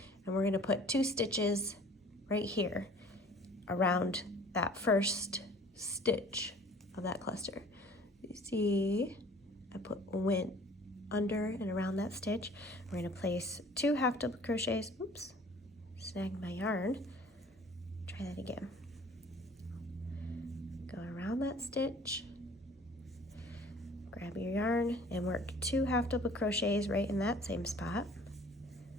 and we're going to put 2 stitches right here around that first stitch of that cluster. You see, I went under and around that stitch. We're going to place 2 half double crochets. Oops, snagged my yarn. Try that again. Go around that stitch, grab your yarn and work 2 half double crochets right in that same spot.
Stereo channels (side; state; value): both; normal; correlation 0.50